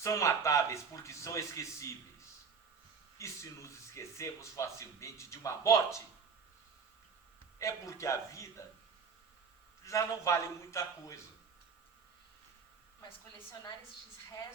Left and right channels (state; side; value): quieter; left; 5.7 dB